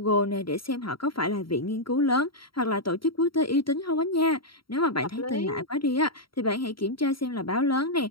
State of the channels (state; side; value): late; right; 0.74 ms